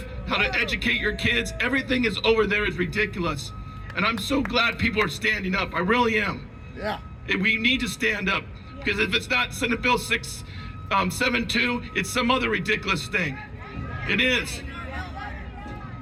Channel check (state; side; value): identical; both; correlation 1.00